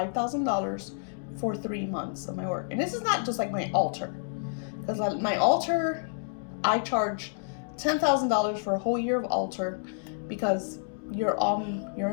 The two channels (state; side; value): silent; right; digital silence